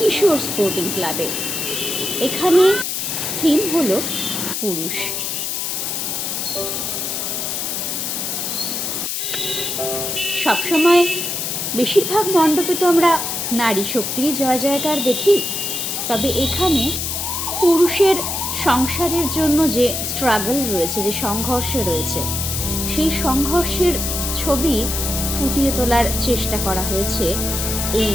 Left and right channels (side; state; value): left; noise; hiss, 2 dB below the sound